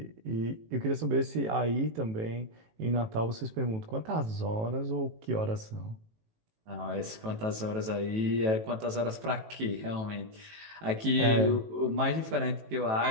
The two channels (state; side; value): late; left; 18 ms